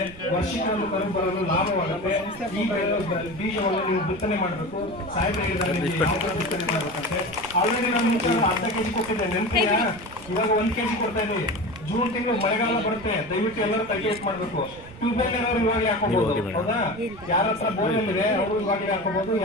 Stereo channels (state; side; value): noise; right; rumble, 18 dB below the sound